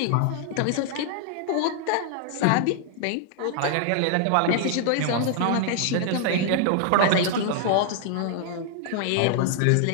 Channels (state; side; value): different; both; correlation -0.01